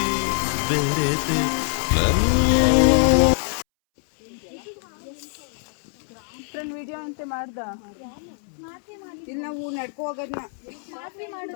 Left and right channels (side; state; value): right; silent; 63 dB below the other